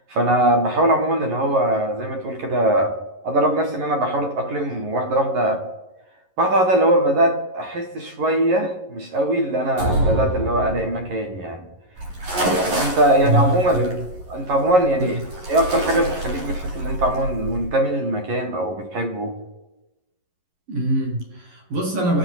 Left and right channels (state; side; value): late; left; 11 ms